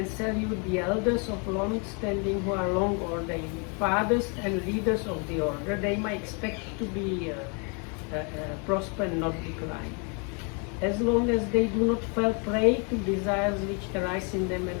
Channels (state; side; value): quieter; right; 35.6 dB